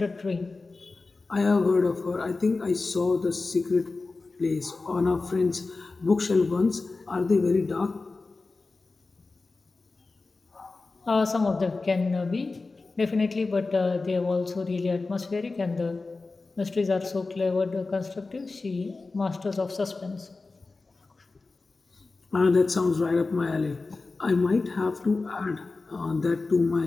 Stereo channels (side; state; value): right; quieter; 3.7 dB